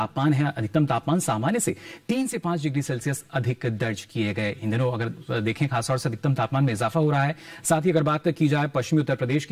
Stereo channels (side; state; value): both; identical; correlation 1.00